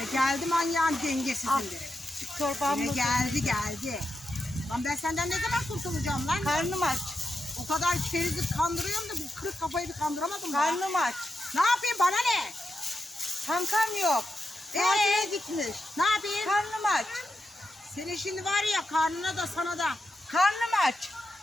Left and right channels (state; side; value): normal; both; correlation 0.86